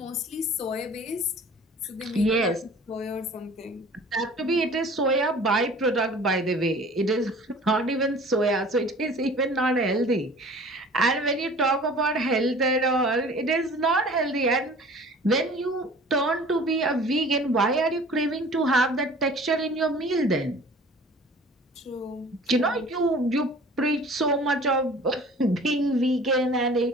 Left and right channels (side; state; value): both; normal; correlation 0.46